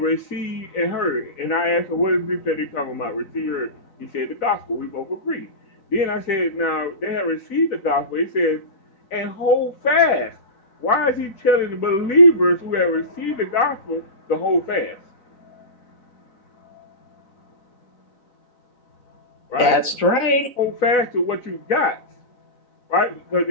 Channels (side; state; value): right; late; 3.9 ms